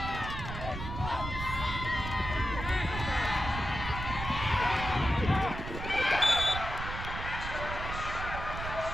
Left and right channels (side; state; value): right; noise; rumble, 6 dB below the sound